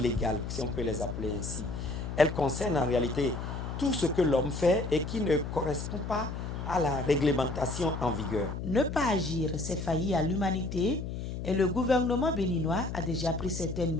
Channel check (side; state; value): left; noise; hum, 6 dB below the sound